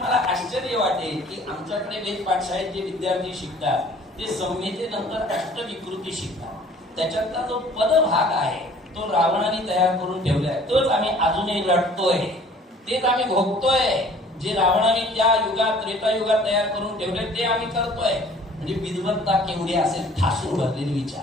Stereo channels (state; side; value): normal; both; correlation 0.52